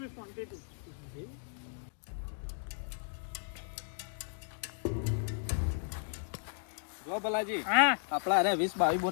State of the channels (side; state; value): right; silent; digital silence